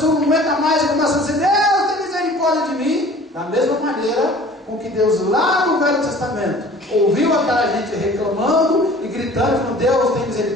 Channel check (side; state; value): both; normal; correlation 0.47